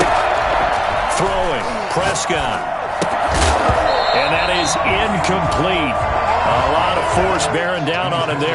Throwing, Prescott. And that is incomplete. A lot of force bearing down on him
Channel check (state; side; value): identical; both; correlation 1.00